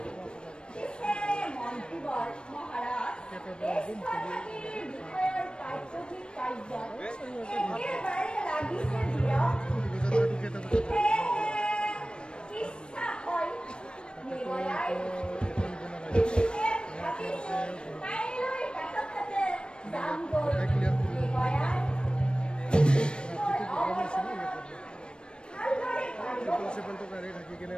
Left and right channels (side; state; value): right; late; 0.054 ms